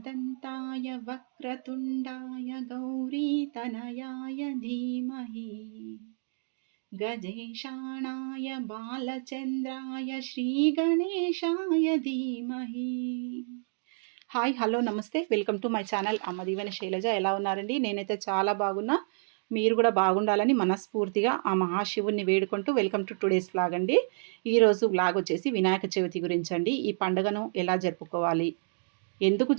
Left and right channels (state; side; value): silent; left; digital silence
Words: वक्रतुण्डाय गौरीतनयाय धीमहि गजेशाणाय బాలచంద్రాయ శ్రీగణేశాయ ధీమహి. హాయ్ హలో నమస్తే, వెల్కమ్ టు మై ఛానల్ అమ్మ దీవెన శైలజ. ఎలా ఉన్నారండి? నేనైతే చాలా బాగున్నా. మీరు కూడా బాగుండాలని మనస్ఫూర్తిగా ఆ మహాశివుణ్ణి వేడుకుంటూ వెల్కమ్ టు టుడేస్ వ్లాగ్ అండి. ఈరోజు వ్లాగ్ వచ్చేసి వినాయక చవితి గురించి అండి. ఈ పండుగను ఎలా జరుపుకోవాలి, ఎందుకు